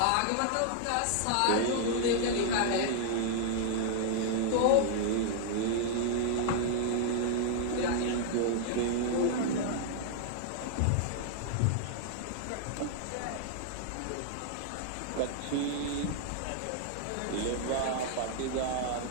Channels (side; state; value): both; different; correlation -0.01